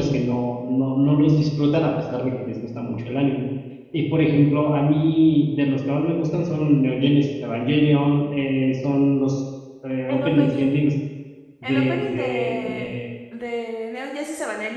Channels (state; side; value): identical; both; correlation 1.00